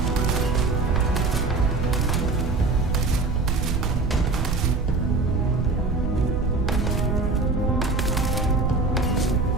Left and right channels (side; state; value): right; noise; rumble, 1 dB below the sound